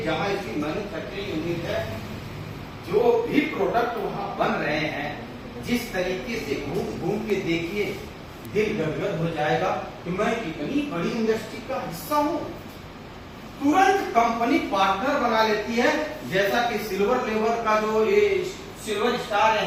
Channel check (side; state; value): both; identical; correlation 1.00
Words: जहां इसकी मैन्युफैक्चरिंग यूनिट है, जो भी प्रोडक्ट वहां बन रहे हैं, जिस तरीके से घूम घूम के देखिए दिल गदगद हो जाएगा कि मैं इतनी बड़ी इंडस्ट्री का हिस्सा हूं। तुरंत कंपनी पार्टनर बना लेती है, जैसा कि सिल्वर लेवल का जो ये सिल्वर स्टार